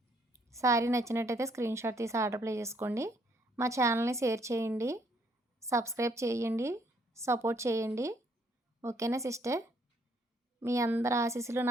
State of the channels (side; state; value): both; normal; correlation 0.68